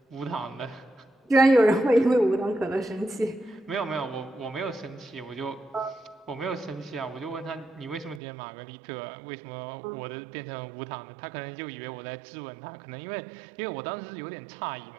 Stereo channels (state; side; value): drops out; left; at 8.2 s